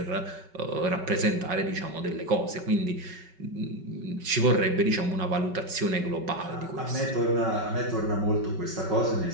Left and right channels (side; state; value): left; late; 5.3 ms